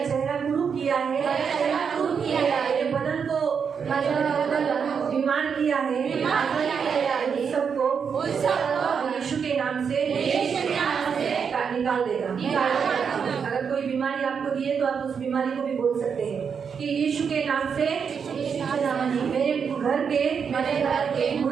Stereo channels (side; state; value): left; quieter; 6.5 dB